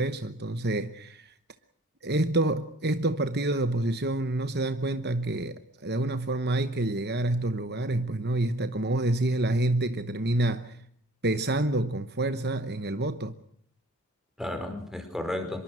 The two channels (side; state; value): both; normal; correlation 0.53